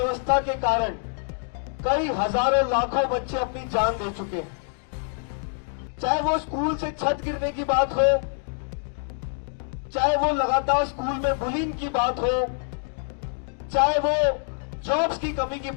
के कारण कई हजारों लाखों बच्चे अपनी जान दे चुके हैं। चाहे वो स्कूल से छत गिरने की बात हो, चाहे वो लगातार स्कूल में बुलिंग की बात हो, चाहे वो जॉब्स की कमी की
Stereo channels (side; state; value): right; silent; 59 dB below the other